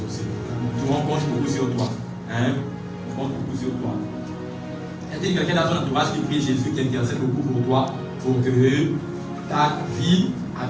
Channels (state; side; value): identical; both; correlation 1.00